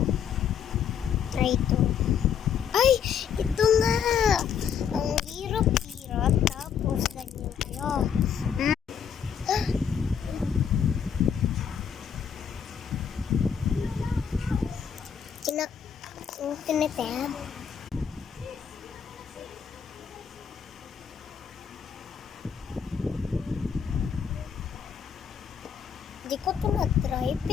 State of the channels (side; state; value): right; quieter; 7.6 dB